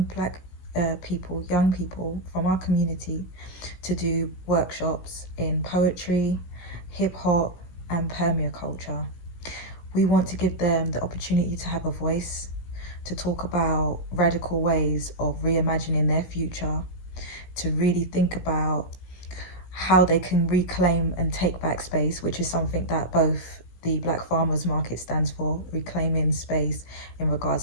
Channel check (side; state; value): right; late; 17 ms